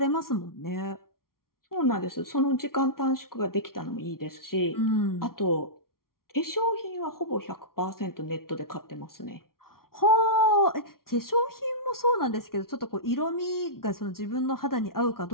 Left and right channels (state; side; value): late; right; 0.93 ms